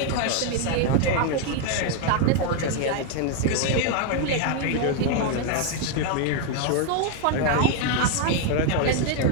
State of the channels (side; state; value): both; different; correlation 0.01